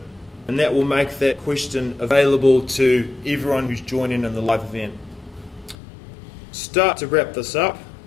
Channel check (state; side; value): drops out; right; at 5.8 s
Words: and that will make that question available to everyone who's joining in the live event. Start to wrap this up.